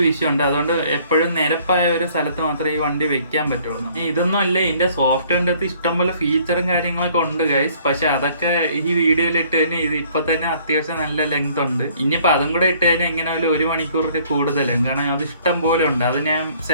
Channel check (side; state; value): both; inverted; correlation -0.59